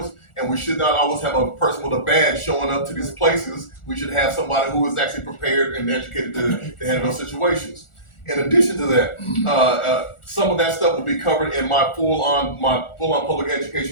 and we should not always have a person with a badge showing up to these places. We should have somebody who is actually prepared and educated to handle those situations. In addition to that, some of that stuff will be covered in my full-on public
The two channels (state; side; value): late; right; 1.4 ms